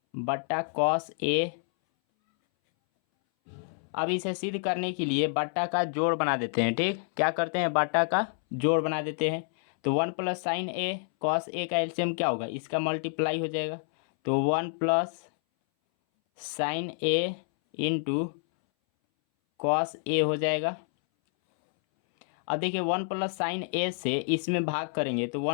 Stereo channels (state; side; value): silent; right; 59 dB below the other